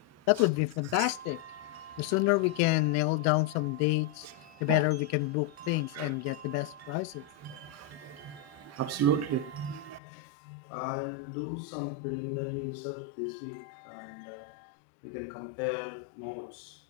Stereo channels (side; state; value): right; drops out; at 10.0 s